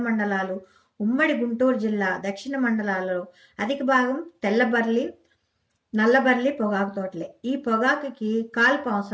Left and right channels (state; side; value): identical; both; correlation 1.00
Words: మండలాలు, ఉమ్మడి గుంటూరు జిల్లా దక్షిణ మండలాలలో అధిక భాగం తెల్లబర్లి, నల్లబర్లి పొగాకు తోటలే. ఈ పొగాకుకి కాల్పు